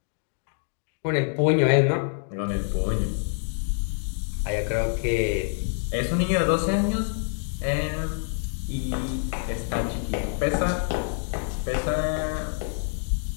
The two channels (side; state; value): right; silent; 59 dB below the other